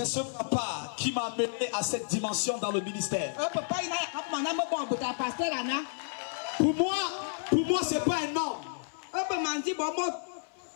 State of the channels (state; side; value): silent; right; 57 dB below the other